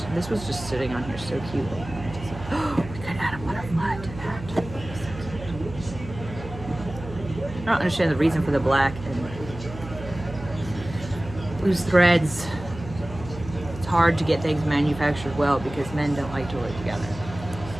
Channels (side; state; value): right; noise; hum, 13 dB below the sound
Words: This was just sitting on here so cutely. We could add a butterfly to that. I don't understand the reason for the black and loose threads. It's hard to get things manufactured well because men don't like to work together.